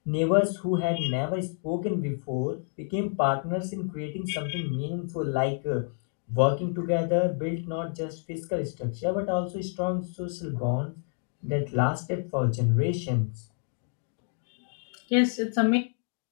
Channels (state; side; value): silent; right; 59 dB below the other